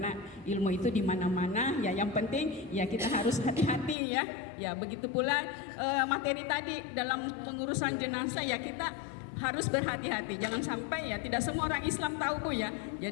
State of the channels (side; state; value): right; drops out; at 4.0 s